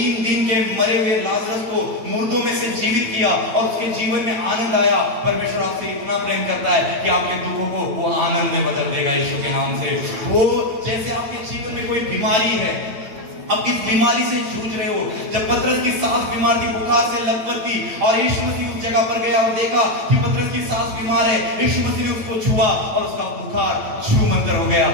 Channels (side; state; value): left; late; 9.0 ms